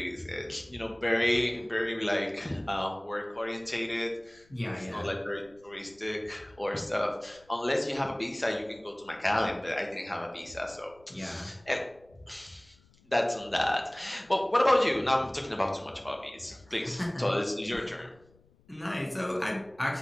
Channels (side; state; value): left; noise; rumble, 29 dB below the sound